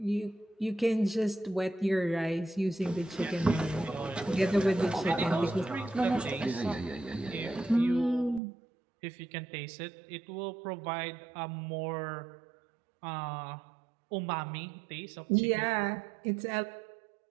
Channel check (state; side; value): drops out; left; at 8.4 s